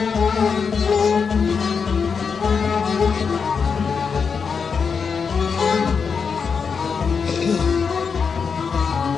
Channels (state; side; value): quieter; right; 5.8 dB